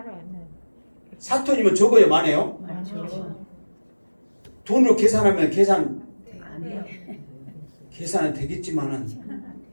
4톤이면 적어요 많아요? 돈으로 계산하면 계산은 되겠지만은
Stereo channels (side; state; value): both; inverted; correlation -1.00